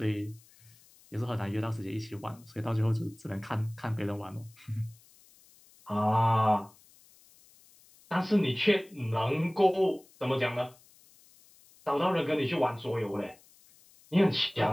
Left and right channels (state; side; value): noise; left; hiss, 27 dB below the sound